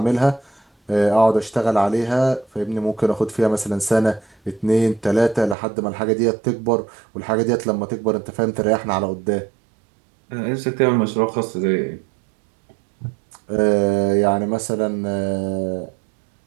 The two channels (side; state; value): left; drops out; at 5.6 s